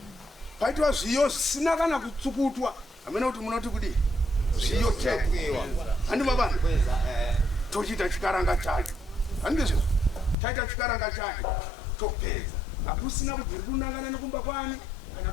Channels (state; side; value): drops out; right; at 10.4 s